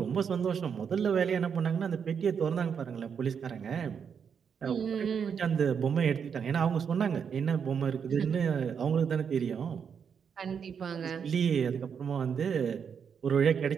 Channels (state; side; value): quieter; left; 7.0 dB